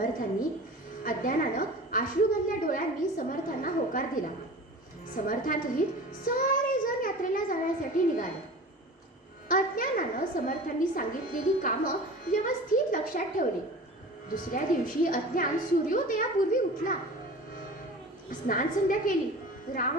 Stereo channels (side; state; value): both; normal; correlation 0.37